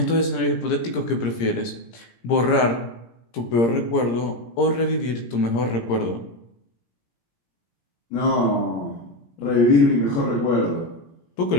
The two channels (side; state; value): right; late; 17 ms